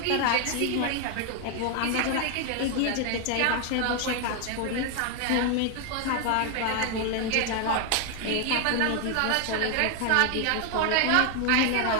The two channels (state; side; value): different; both; correlation 0.00